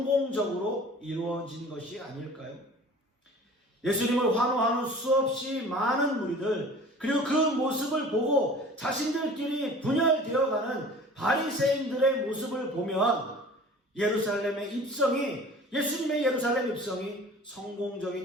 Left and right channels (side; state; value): both; normal; correlation 0.44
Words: 이루어진 것이 아닐까요? 예수님을 환호하는 수없이 많은 무리들, 그리고 그 모습을 보고 자신들끼리 분열되어가는 바리새인들의 모습을 보면 예수님의 예루살렘 입성이